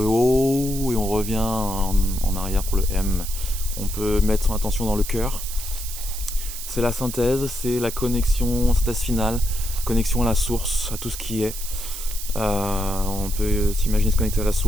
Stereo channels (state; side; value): noise; right; hiss, 9 dB below the sound